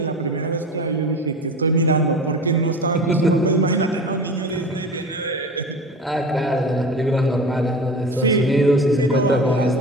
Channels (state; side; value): normal; both; correlation 0.33